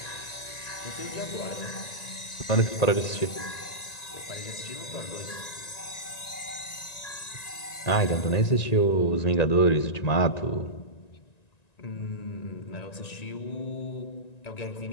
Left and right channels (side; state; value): right; late; 1.9 ms